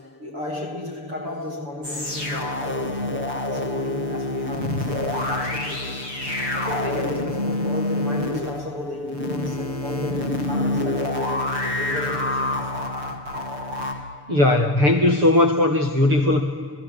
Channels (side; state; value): left; late; 6.9 ms